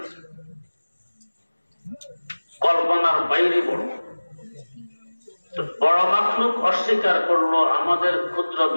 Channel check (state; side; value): inverted; both; correlation -1.00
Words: কল্পনার বাইরে বড়। বড় মাখলুক অস্বীকার করলো, আমাদের ক্ষুদ্র